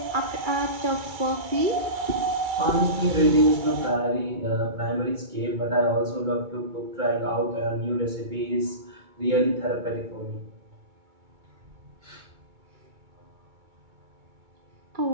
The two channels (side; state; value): left; late; 2.3 ms